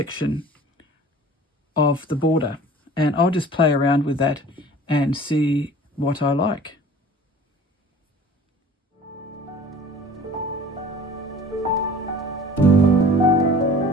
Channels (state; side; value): normal; both; correlation 0.45